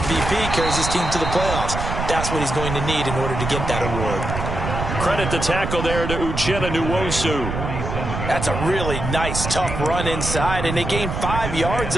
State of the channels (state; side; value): noise; right; rumble, 4 dB below the sound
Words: carries his team to the playoffs. That's what he's going to need in order to get that award. Credit the tackle there to Uchenna Nwosu. That's a really nice, tough run inside, and they gained 5 yards